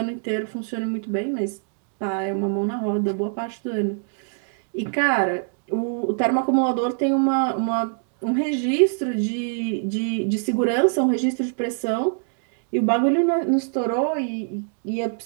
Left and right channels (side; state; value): left; silent; digital silence